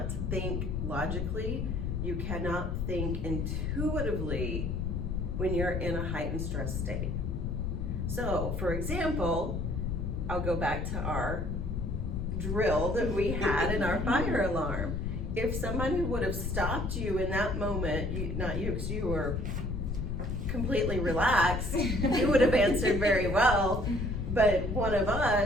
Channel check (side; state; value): left; noise; rumble, 1 dB below the sound